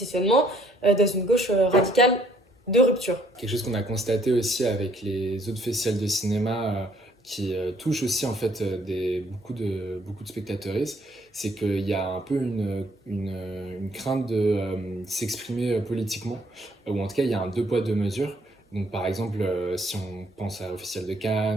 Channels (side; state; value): both; normal; correlation 0.64